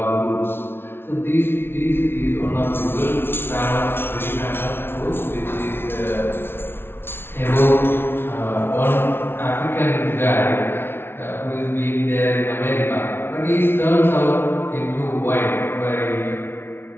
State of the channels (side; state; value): right; late; 0.11 ms